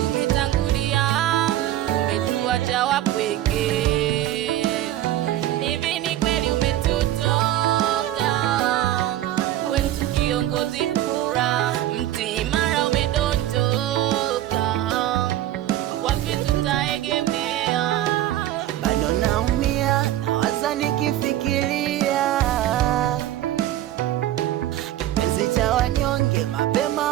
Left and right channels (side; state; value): left; quieter; 13.4 dB